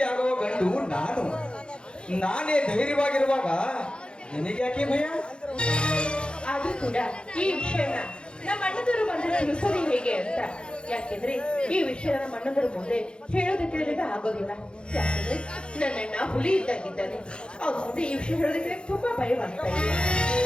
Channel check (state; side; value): late; right; 0.053 ms